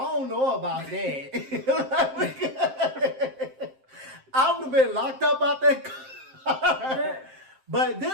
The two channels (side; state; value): left; late; 7.6 ms